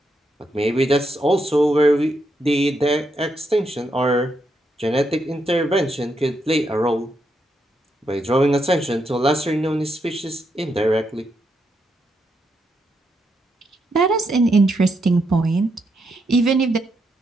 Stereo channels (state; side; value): normal; both; correlation 0.81